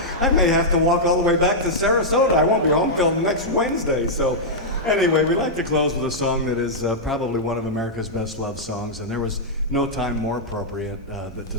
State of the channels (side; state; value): both; normal; correlation -0.08